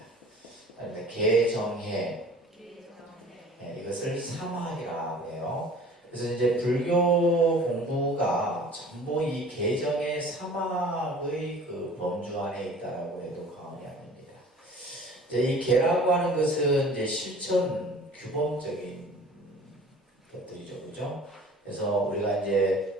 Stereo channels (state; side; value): normal; both; correlation 0.46